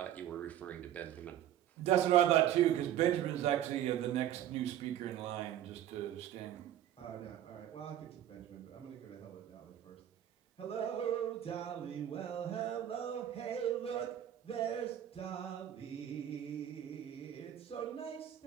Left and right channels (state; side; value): quieter; left; 11.5 dB